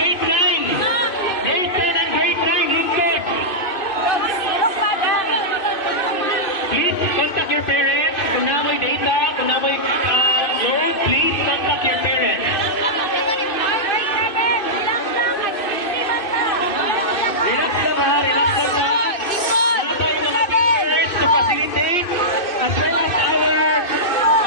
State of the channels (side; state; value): right; late; 2.6 ms